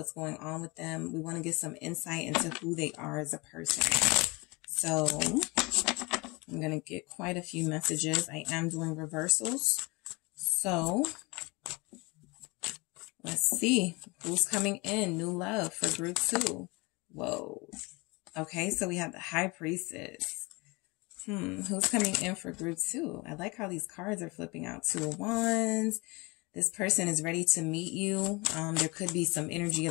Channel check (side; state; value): right; quieter; 25.7 dB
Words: going on with them. We want to get some insight into who they are as a person. So I'm going to get quite a few messages. I am doing reversals. So let's see who's coming in. New love for group 2. Whoa. Okay, so we have the High Priestess. Who's coming in for group 2? I like how these cards are flipping out. 2 of Wands. This person is ready to meet you. There could be some energy